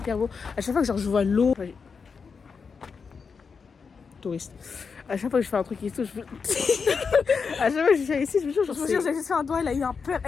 beau. À chaque fois que, genre, je vois l'eau. Touriste. À chaque fois que je fais un truc ici, je veux. À chaque fois que je viens ici, je me jure, genre. Je vous jure, j'ai juste fait un doigt, elle a eu un peur,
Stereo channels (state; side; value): quieter; right; 5.5 dB